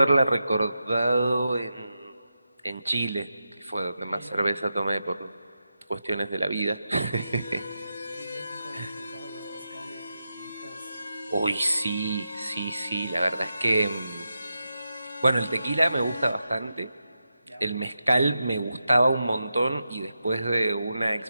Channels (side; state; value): both; inverted; correlation -0.88